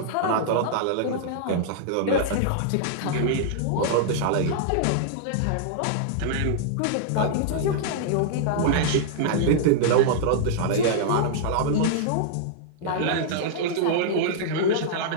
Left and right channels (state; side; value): different; both; correlation -0.01